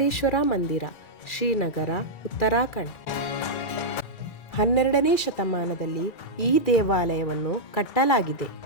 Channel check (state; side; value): late; right; 2.4 ms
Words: ಮಂದಿರ, ಶ್ರೀನಗರ, ಉತ್ತರಾಖಂಡ್. 12ನೇ ಶತಮಾನದಲ್ಲಿ ಈ ದೇವಾಲಯವನ್ನು ಕಟ್ಟಲಾಗಿದೆ.